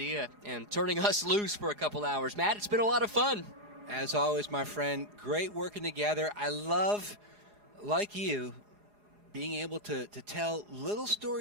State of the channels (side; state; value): left; late; 4.8 ms